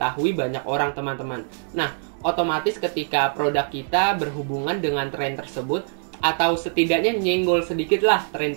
banyak orang teman-teman. Nah, otomatis ketika produk kita berhubungan dengan tren tersebut, atau setidaknya nyenggol sedikit lah tren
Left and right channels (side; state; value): left; silent; 63 dB below the other